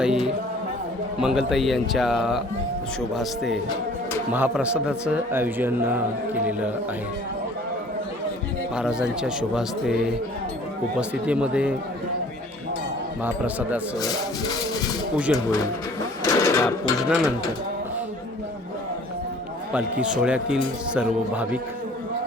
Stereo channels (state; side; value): normal; both; correlation 0.52